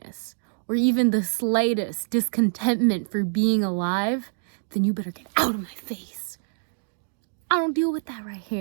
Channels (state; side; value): silent; left; digital silence